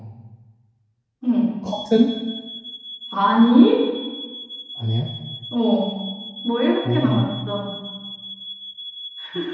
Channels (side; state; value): both; identical; correlation 1.00